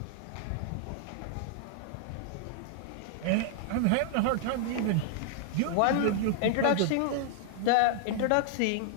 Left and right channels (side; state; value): both; different; correlation 0.00